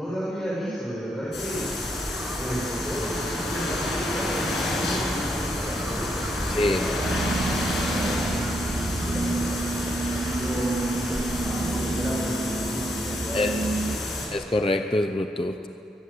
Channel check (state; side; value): normal; both; correlation 0.77